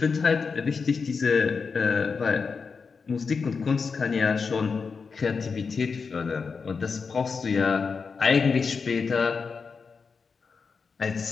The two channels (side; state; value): right; quieter; 5.2 dB